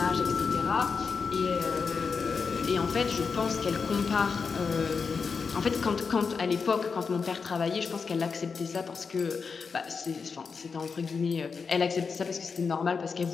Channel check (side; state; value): right; quieter; 5.3 dB